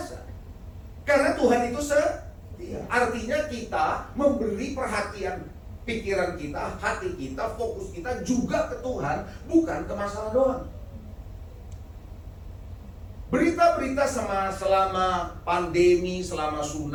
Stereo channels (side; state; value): both; identical; correlation 1.00